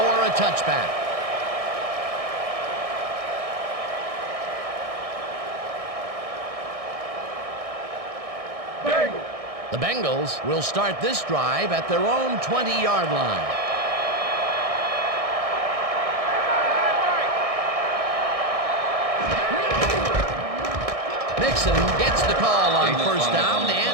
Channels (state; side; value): late; left; 1.6 ms